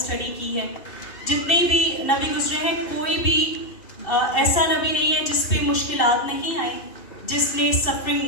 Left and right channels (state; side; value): late; right; 2.7 ms